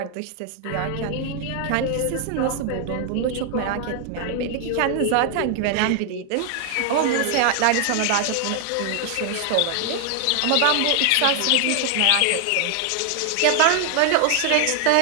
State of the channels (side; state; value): both; different; correlation 0.00